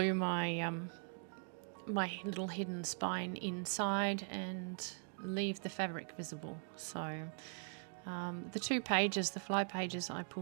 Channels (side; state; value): left; silent; 50 dB below the other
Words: my my little hidden spine inside and leave the fabric visible. So the 2 pages, the fly pages I